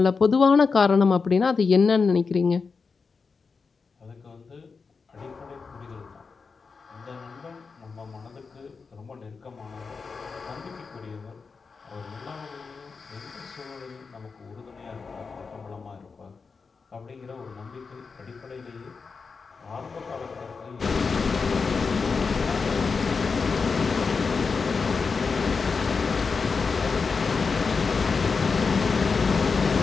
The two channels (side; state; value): right; quieter; 4.9 dB